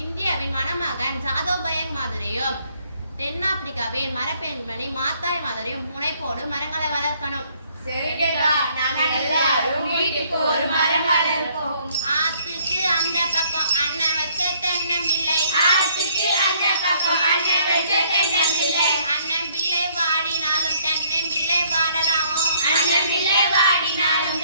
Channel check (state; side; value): inverted; both; correlation -0.64